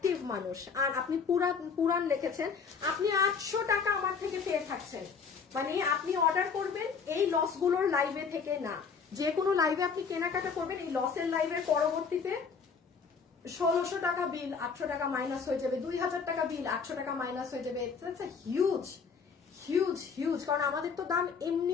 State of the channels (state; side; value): quieter; right; 5.7 dB